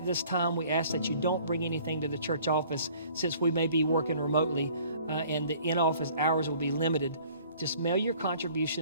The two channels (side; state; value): both; inverted; correlation -0.54